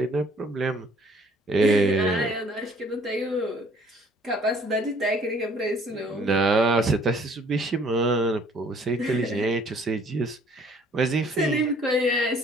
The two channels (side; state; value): both; normal; correlation 0.58